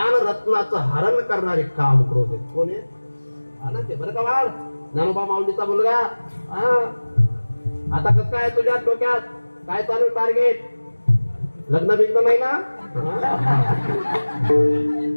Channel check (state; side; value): inverted; both; correlation -1.00